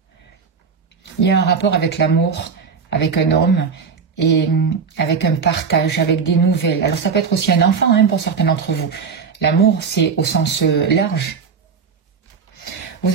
Il y a un rapport avec l'amour, avec un homme et avec un partage, avec des nouvelles. Alors ça peut être aussi un enfant pour certains d'entre vous. L'amour, c'est au sens large.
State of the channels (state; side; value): quieter; left; 5.8 dB